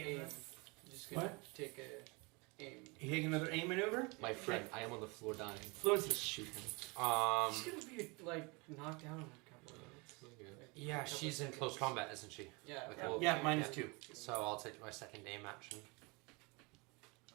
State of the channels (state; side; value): quieter; left; 28.1 dB